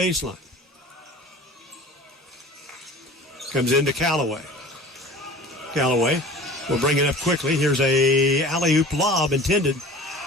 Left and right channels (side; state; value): both; normal; correlation 0.42